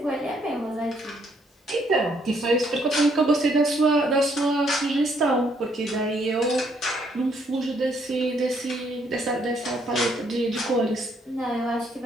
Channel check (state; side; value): normal; both; correlation 0.69